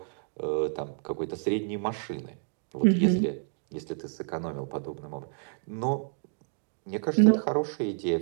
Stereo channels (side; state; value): left; silent; 58 dB below the other